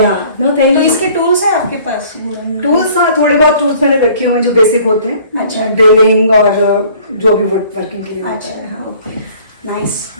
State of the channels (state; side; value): inverted; both; correlation -0.53